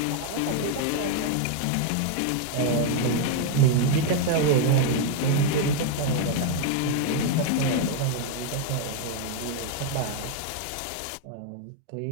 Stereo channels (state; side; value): different; both; correlation 0.01